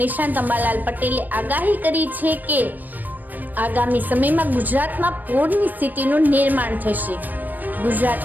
નિષ્ણાત અંબાલાલ પટેલે આગાહી કરી છે કે આગામી સમયમાં ગુજરાતમાં પૂરની સ્થિતિનું નિર્માણ થશે।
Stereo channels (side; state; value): left; late; 0.087 ms